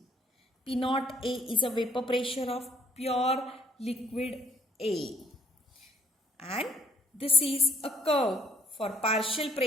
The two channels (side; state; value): both; normal; correlation 0.62